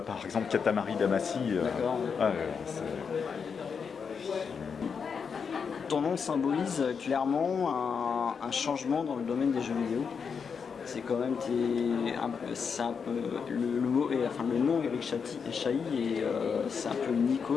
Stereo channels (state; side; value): quieter; right; 6.1 dB